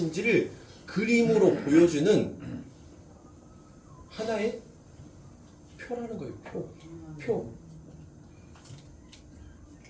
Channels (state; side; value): identical; both; correlation 1.00